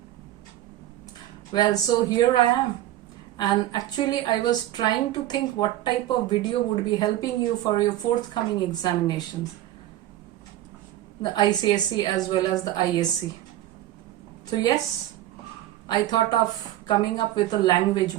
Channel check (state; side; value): quieter; left; 13.8 dB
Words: Well, so here I am. And actually I was trying to think what type of video would be helping you for your forthcoming examinations, the ICSE as well as the ISC. So yes, I thought of coming up with a language